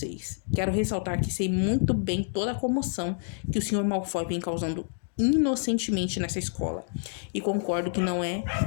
Quero ressaltar que sei muito bem toda a comoção que o Sr. Malfoy vem causando inocentemente nessa escola. E concordo que não é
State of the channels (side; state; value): right; silent; digital silence